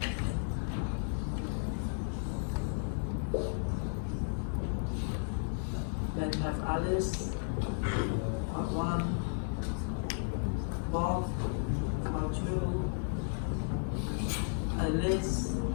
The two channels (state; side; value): silent; right; digital silence